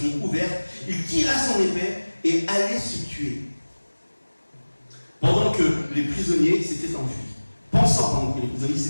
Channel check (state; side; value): inverted; both; correlation -1.00